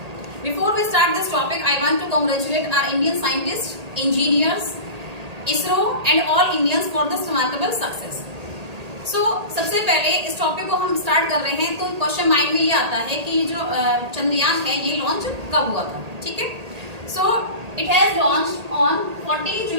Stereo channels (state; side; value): late; left; 1.8 ms